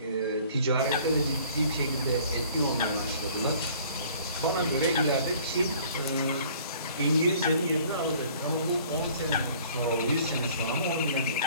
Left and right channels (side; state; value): both; inverted; correlation -0.54